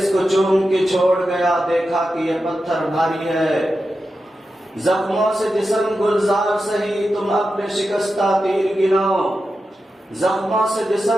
کو چوم کے چھوڑ گیا، دیکھا کہ یہ پتھر بھاری ہے. زخموں سے جسم گلزار سہی، تم اپنے شکستہ تیر گنو. زخموں سے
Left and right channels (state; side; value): normal; both; correlation 0.90